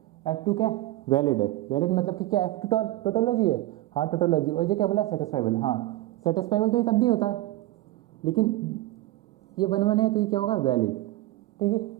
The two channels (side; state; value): left; quieter; 16.9 dB